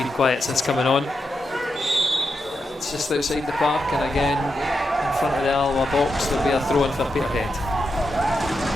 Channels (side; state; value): both; normal; correlation 0.86